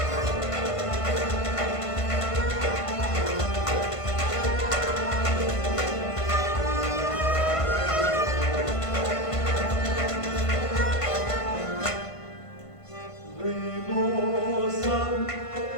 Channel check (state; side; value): late; right; 1.5 ms